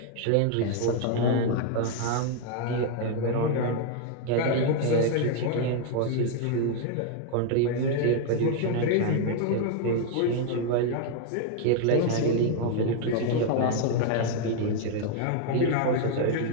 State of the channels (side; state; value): both; different; correlation 0.00